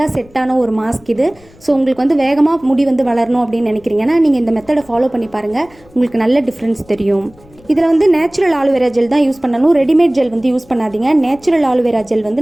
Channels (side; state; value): left; noise; rumble, 27 dB below the sound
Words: செட்டான ஒரு மாஸ்க் இது. ஸோ உங்களுக்கு வந்து வேகமாக முடி வந்து வளரணும் அப்படின்னு நினைக்கிறீங்கன்னா நீங்கள் இந்த மெத்தடை ஃபாலோ பண்ணி பாருங்கள், உங்களுக்கு நல்ல டிஃப்ரென்ஸ் தெரியும். இதில் வந்து நேச்சுரல் ஆலுவேரா ஜெல் தான் யூஸ் பண்ணணும், ரெடிமேட் ஜெல் வந்து யூஸ் பண்ணாதீங்க. நேச்சுரல் ஆலுவேரா ஜெல் வந்து